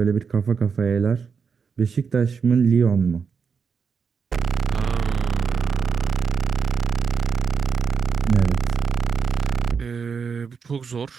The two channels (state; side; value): quieter; left; 5.9 dB